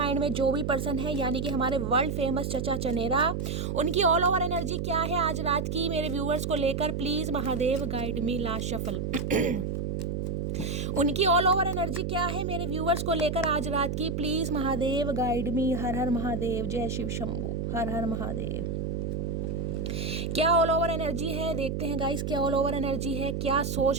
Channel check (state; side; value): noise; right; hum, 2 dB below the sound